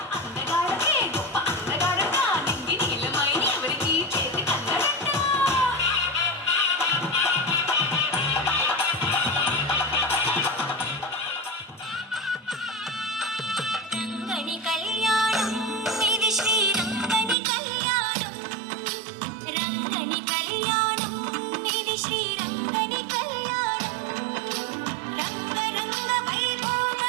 అందగాడకే గొప్ప అందగాడంట నింగి నీలమైన ఎవరికి చేతి కందడంట రంగని కళ్యాణం ఇది శ్రీరంగని కళ్యాణం రంగని కళ్యాణం ఇది శ్రీరంగని కళ్యాణం రంగరంగ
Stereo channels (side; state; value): left; drops out; at 17.4 s